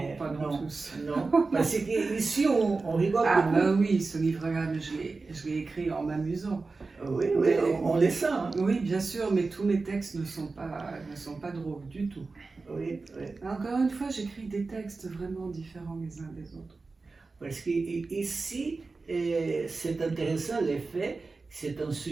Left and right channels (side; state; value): left; quieter; 3.9 dB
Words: pas dans tous. Non, parce qu'ici on rigole beaucoup. Ben oui, ce livre-là, je l'ai écrit en m'amusant. Oui, on les sent. Hein. Oui, bien sûr, mais tous mes textes ne sont pas drôles du tout. Oui. Encore une fois, j'écris des textes vraiment différents les uns des autres. Parce qu'ici, c'est intéressant le fait que c'est un